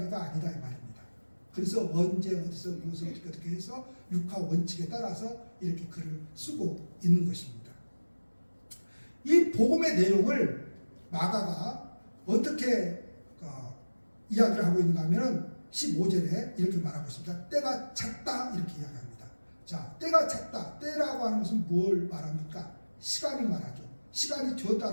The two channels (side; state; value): both; inverted; correlation -1.00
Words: 아니다 이 말입니다. 그래서 언제 어디서 무엇을 어떻게 해서 육화 원칙에 따라서 이렇게 글을 쓰고 있는 것입니다. 이 복음의 내용을 마가가 어떻게 이야기를 하고 있는가 하면 15절에 이렇게 말하고 있습니다. 때가 찼다 이렇게 이야기합니다. 자, 때가 찼다. 때라고 하는 것은 뭘 말합니까? 시간을 말하죠. 시간이